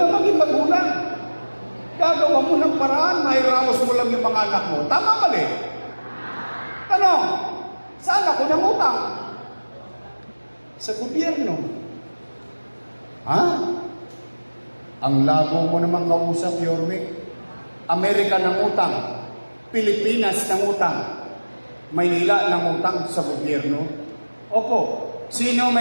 maging magulang. Gagawa mo ng paraan, mahiraos mo lang yung mga anak mo. Tama mali? Tanong, saan ako nangutang? Sa gobyerno. Ang labo mo naman kausap, Yorme. Amerika nangutang, Pilipinas nangutang, Maynila nangutang sa gobyerno. Opo, sino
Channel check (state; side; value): inverted; both; correlation -1.00